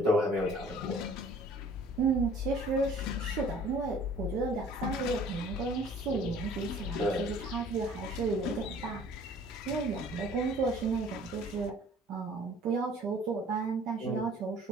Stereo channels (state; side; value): normal; both; correlation 0.52